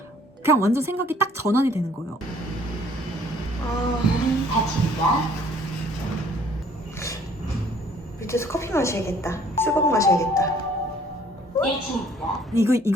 그냥 완전 생각이 딱 전환이 되는 거예요. 문이 닫힙니다. 밑에서 커피 마셔야겠다. 수박 마셔야겠다. 1층입니다.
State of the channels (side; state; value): both; normal; correlation 0.58